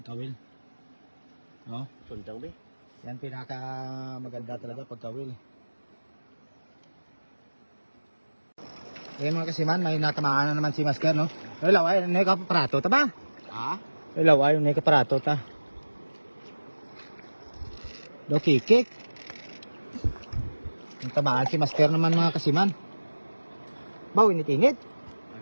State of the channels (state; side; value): inverted; both; correlation -1.00